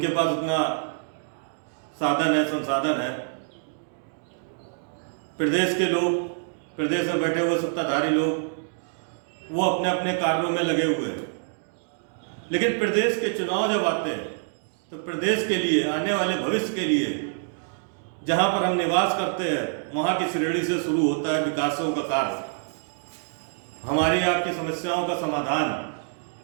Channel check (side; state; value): left; silent; digital silence